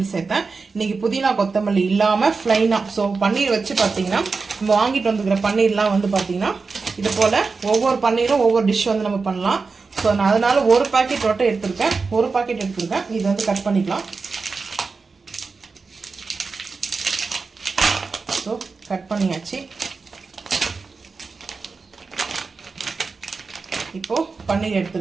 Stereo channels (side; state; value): left; quieter; 4.5 dB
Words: சேர்த்தேன். இன்றைக்கி புதினா கொத்தமல்லி இல்லாமல் ஃப்ளைனாக ஸோ பன்னீர் வச்சு பார்த்தீங்கன்னா நம்ம வாங்கிட்டு வந்துக்கிற பன்னீர்லாம் வந்து பார்த்தீங்கன்னா இது போல் ஒவ்வொரு பன்னீரும் ஒவ்வொரு டிஷ் வந்து நம்ம பண்ணலாம். ஸோ நான் அதனால் ஒரு பாக்கெட் மட்டும் எடுத்துருக்கேன். ஒரு பாக்கெட் எடுத்துருக்கேன். இது வந்து கட் பண்ணிக்கலாம். ஸோ கட் பண்ணியாச்சு. இப்போ பன்னீர்